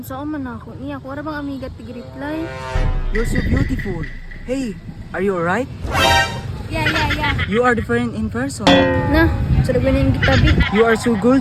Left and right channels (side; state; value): both; identical; correlation 1.00